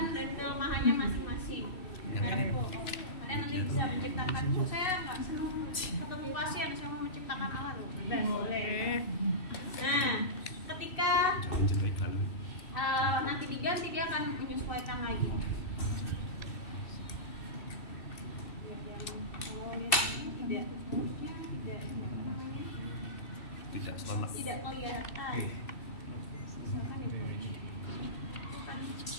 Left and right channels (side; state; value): right; late; 2.6 ms